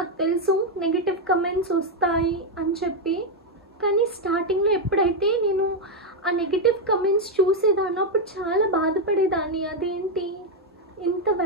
తెలుసు నెగిటివ్ కమెంట్స్ వస్తాయి అని చెప్పి, కానీ స్టార్టింగ్లో ఎప్పుడైతే నేను ఆ నెగిటివ్ కమెంట్స్ చూసేదాన్ని అప్పుడు చాలా బాధపడేదాన్ని. అదేంటి ఇంత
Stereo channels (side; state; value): both; normal; correlation 0.02